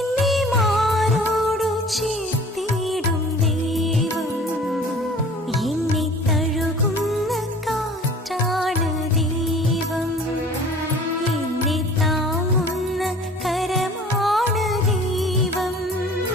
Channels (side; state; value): both; normal; correlation 0.47